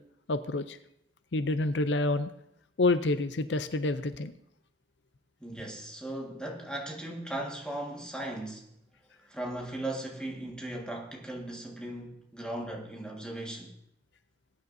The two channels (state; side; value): normal; both; correlation 0.42